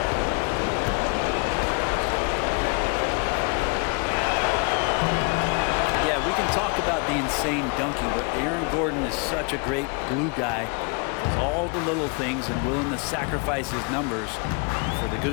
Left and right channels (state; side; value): quieter; right; 33.1 dB